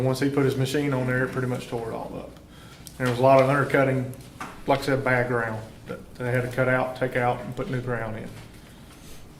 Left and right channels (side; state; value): both; identical; correlation 1.00